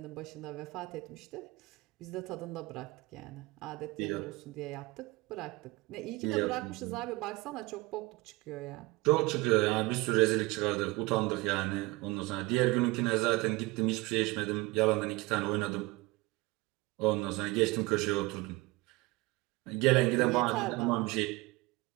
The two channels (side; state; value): left; quieter; 22.7 dB